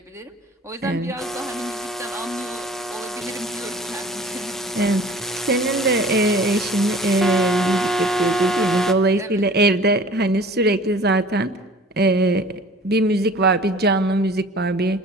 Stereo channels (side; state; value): both; normal; correlation 0.46